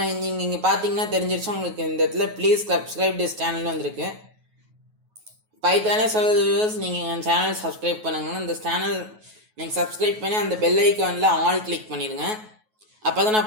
நீங்கள் இங்கே பார்த்தீங்கன்னா தெரிஞ்சிருச்சு உங்களுக்கு. இந்த இடத்துல ப்ளீஸ் சப்ஸ்கிரைப் திஸ் சேனல் வந்திருக்கு. பைத்தானே சொல்லுது வியூவர்ஸ், நீங்கள் என் சேனல் சப்ஸ்கிரைப் பண்ணுங்கன்னா இந்த சேனல் நீங்கள் சப்ஸ்கிரைப் பண்ணி அந்த பெல் ஐக்கானில் ஆல் கிளிக் பண்ணிடுங்க. அப்போ தான்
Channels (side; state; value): left; late; 9.3 ms